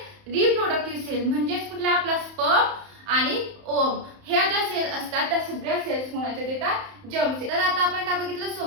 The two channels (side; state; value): left; late; 31 ms